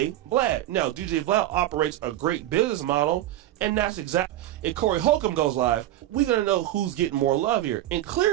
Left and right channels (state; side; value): quieter; left; 13.9 dB